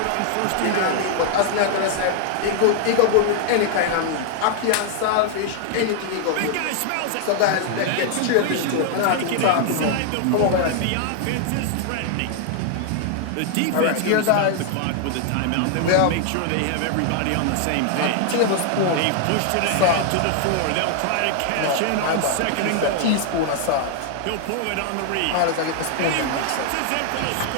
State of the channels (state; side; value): different; both; correlation 0.00